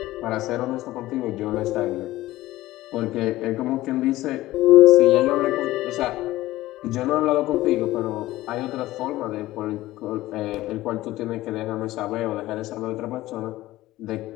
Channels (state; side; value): quieter; right; 16.7 dB